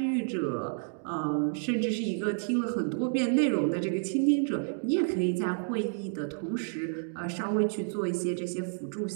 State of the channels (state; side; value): silent; left; digital silence